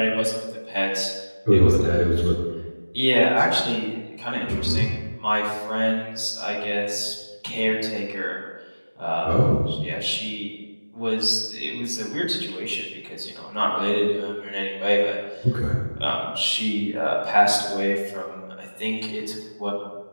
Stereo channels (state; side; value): inverted; both; correlation -1.00